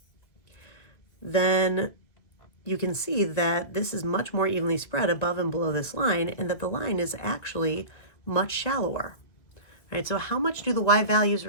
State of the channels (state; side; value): late; right; 2.1 ms